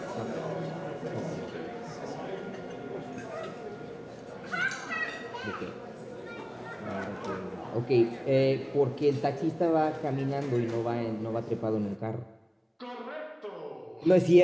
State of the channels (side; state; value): both; identical; correlation 1.00